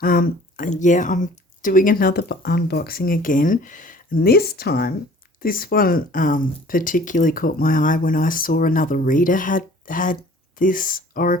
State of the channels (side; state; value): both; normal; correlation 0.50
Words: Yeah, I'm doing another unboxing again, and this time, this one particularly caught my eye when I saw another reader had this